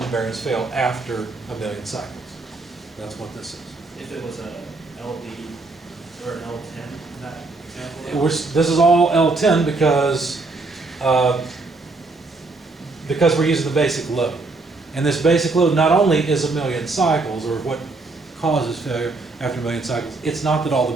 the bearings fail after 1 million cycles. That's what this is. If it was a LD or an L10, in that example? This is all L10 because we're using the basic load. And this basic load not only is 1 million cycles, or what causes failure after 1 million cycles, it's not that all the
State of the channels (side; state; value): left; quieter; 3.5 dB